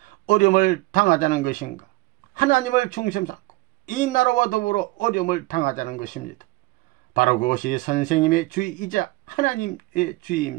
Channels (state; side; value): quieter; left; 21.6 dB